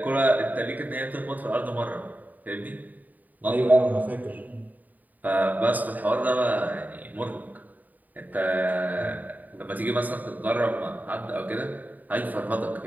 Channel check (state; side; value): late; left; 0.082 ms